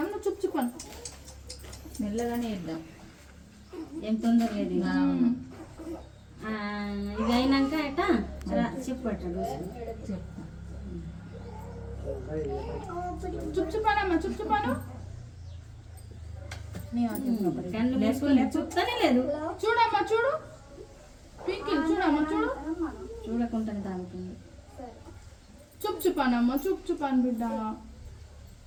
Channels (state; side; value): identical; both; correlation 1.00